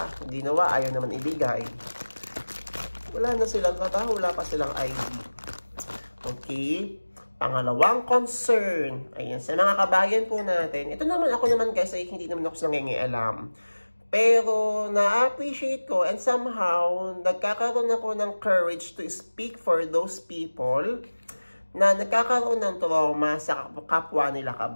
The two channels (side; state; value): both; inverted; correlation -1.00